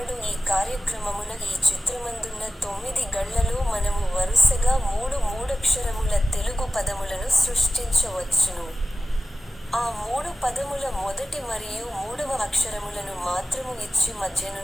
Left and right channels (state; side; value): normal; both; correlation 0.96